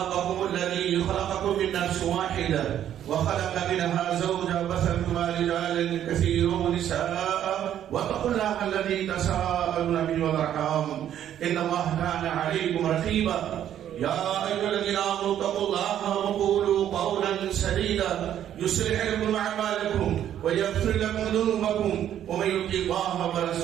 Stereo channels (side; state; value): left; quieter; 10.7 dB